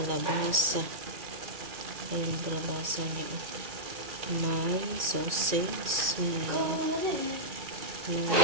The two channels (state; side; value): late; left; 2.3 ms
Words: Ayan, kalabasa niya. May sausage.